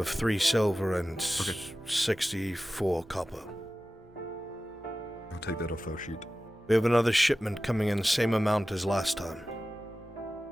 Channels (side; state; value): both; normal; correlation 0.95